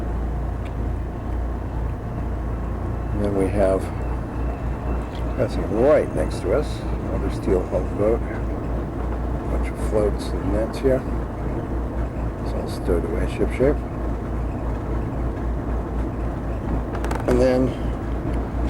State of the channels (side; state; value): both; identical; correlation 1.00